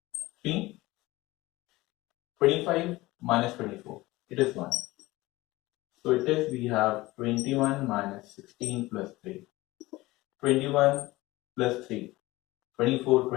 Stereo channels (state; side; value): quieter; right; 19.5 dB